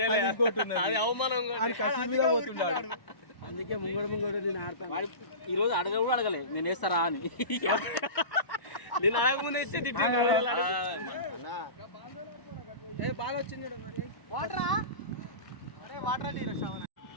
ఇంకోటి అది అవమానం. పోతున్నాడు. అందుకే ముంగడు నేను ఆడతాను. ఈ రోజు అడగ కూడా అడగలే నేను వేస్తారా అని. నేను అడగముందే ఇచ్చే తిట్టాను. బాగా వచ్చింది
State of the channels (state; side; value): late; right; 1.0 ms